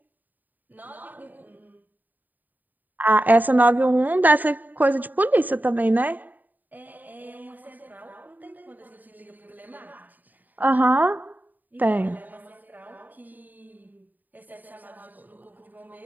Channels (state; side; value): late; left; 0.086 ms